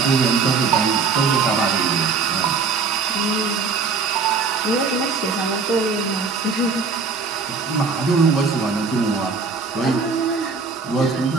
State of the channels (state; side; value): quieter; left; 4.9 dB